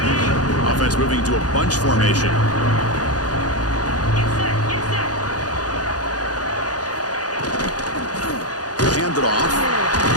Offense moving to a bunch formation. Hand it off.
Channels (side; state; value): right; late; 0.68 ms